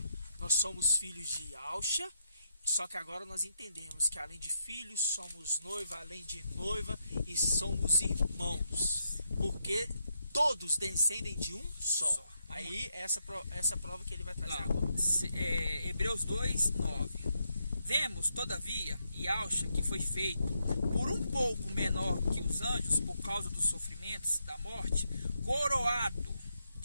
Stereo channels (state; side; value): inverted; both; correlation -0.80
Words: nós somos filhos de Ialcha, só que agora nós entendemos que além de filhos, somos noiva, além de noiva, e somos irmãos. Porque todos descendem de um só. Aí essa prova que ele vai trazer agora. Hebreus 2:9. Vemos, todavia, Ialcha, que foi feito por um pouco menor que os anjos, por causa dos sofrimentos da morte, coroado